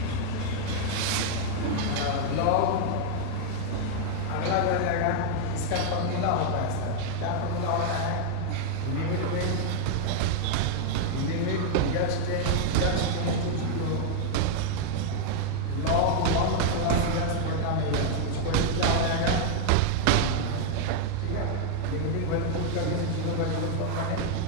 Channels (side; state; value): both; different; correlation 0.00